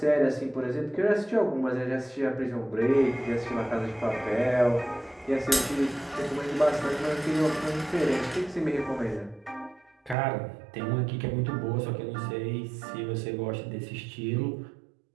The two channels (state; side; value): drops out; left; at 10.2 s